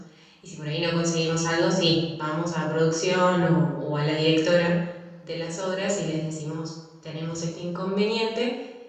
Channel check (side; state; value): both; identical; correlation 1.00